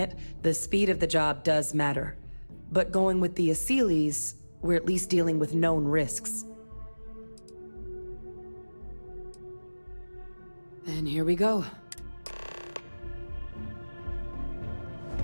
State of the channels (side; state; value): both; inverted; correlation -1.00